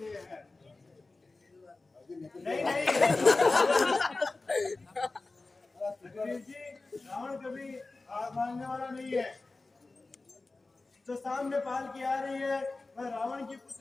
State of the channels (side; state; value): right; quieter; 3.5 dB